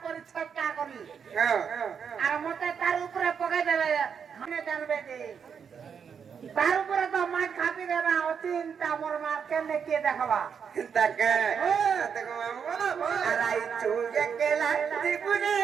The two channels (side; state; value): left; quieter; 6.9 dB